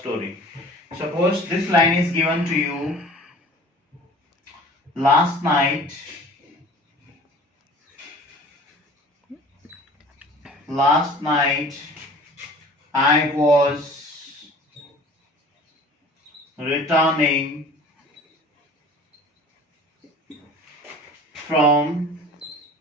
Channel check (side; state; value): both; normal; correlation 0.44